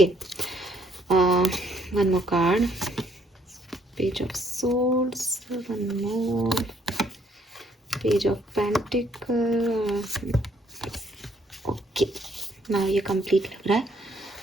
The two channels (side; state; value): both; normal; correlation 0.68